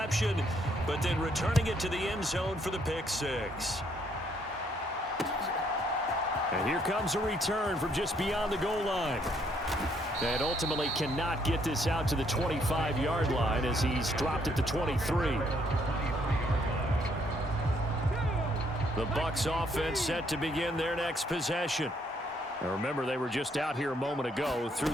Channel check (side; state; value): both; normal; correlation 0.69